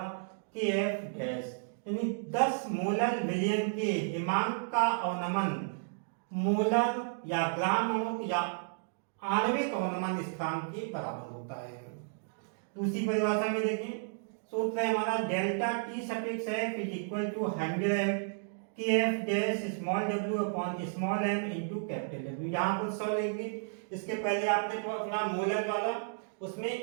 के एफ डैश, यानी 10 मोलर विलयन के हिमांक का अवनमन मोलर या ग्राम अणु या आणविक अवनमन स्थिरांक के बराबर होता है। दूसरी परिभाषा में देखें, सूत्र है हमारा delta T suffix F is equal to 100 K F dash small W upon small M into capital W. यहाँ पर 100 लेंगे, इसके पहले आपने तो अपना मोलर वाला उसमें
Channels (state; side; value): silent; left; digital silence